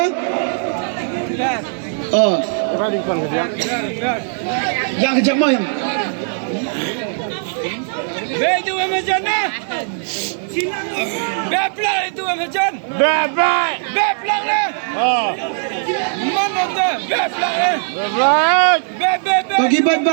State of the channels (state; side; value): silent; left; 64 dB below the other